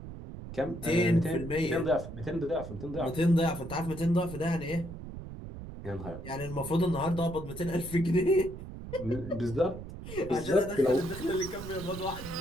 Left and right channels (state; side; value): noise; right; rumble, 11 dB below the sound